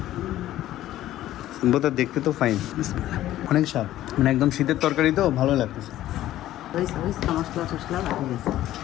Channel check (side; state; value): right; quieter; 13.8 dB